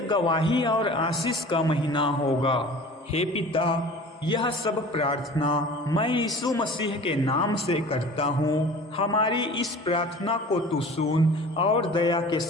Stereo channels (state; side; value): normal; both; correlation 0.42